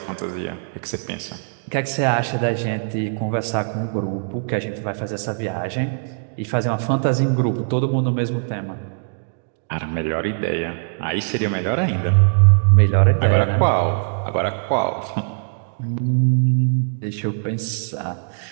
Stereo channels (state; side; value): silent; left; digital silence